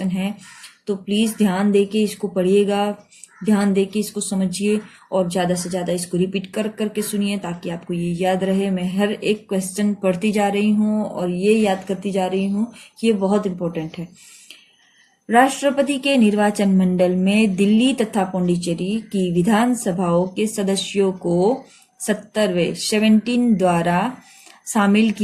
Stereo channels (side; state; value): both; identical; correlation 1.00